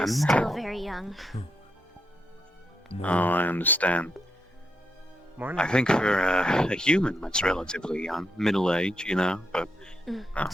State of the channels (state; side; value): normal; both; correlation 0.81